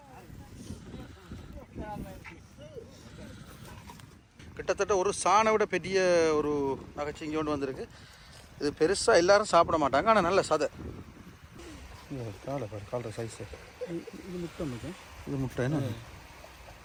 கிட்டத்தட்ட ஒரு சாணை விட பெரிய ஒரு நகைச்சிங்கி கொண்டு வந்திருக்கு. இது பெருசாக எல்லாரும் சாப்பிட மாட்டாங்க, ஆனால் நல்ல சதை. காலை சைஸு இது முட்டை. இது முட்டை என்ன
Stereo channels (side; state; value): both; identical; correlation 1.00